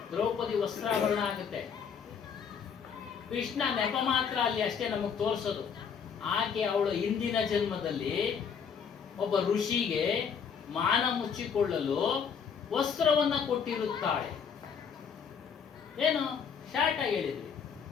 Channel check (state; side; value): quieter; right; 6.8 dB